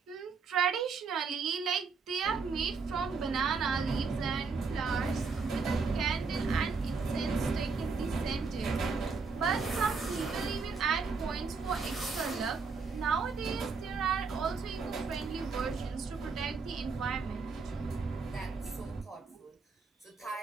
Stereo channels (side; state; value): left; quieter; 4.8 dB